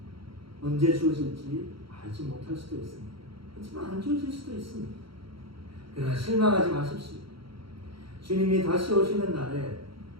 언제 주어질지 알지 못할 수도 있습니다. 하지만 안 주어질 수도 있습니다. 그러나 실망하지 마십시오. 주님이 다시 오시는 날에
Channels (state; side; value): late; left; 0.74 ms